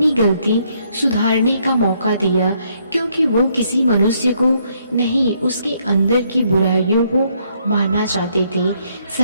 गलती सुधारने का मौका दिया, क्योंकि वो किसी मनुष्य को नहीं, उसके अंदर की बुराइयों को मारना चाहते थे।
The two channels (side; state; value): both; inverted; correlation -0.71